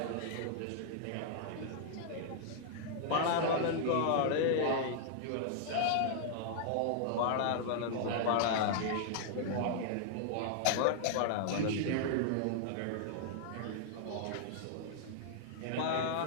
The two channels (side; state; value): both; different; correlation -0.01